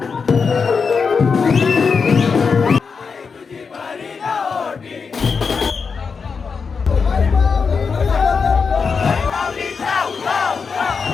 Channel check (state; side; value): quieter; right; 5.4 dB